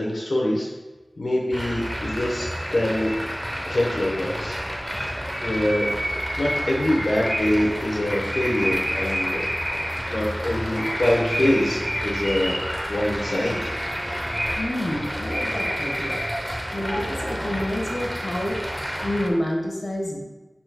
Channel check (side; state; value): both; normal; correlation 0.98